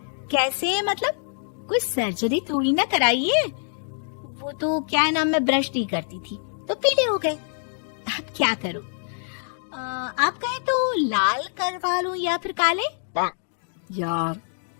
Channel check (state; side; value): silent; right; digital silence